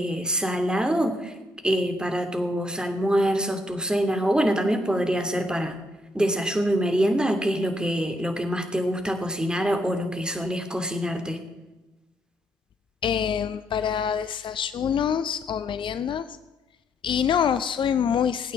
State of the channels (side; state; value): both; normal; correlation 0.74